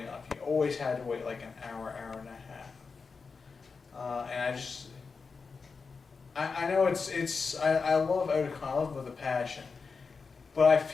You always had to wait like an hour, hour and a half. And I know I love Otakon, I love it with a passion, but I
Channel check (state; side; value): quieter; right; 4.9 dB